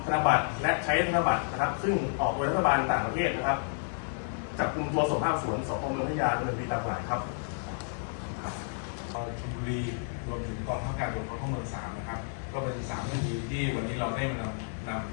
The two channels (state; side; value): silent; right; digital silence